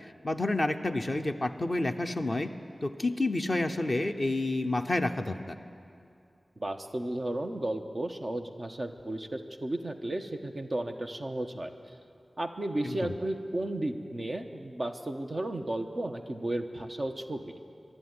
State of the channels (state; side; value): normal; both; correlation 0.95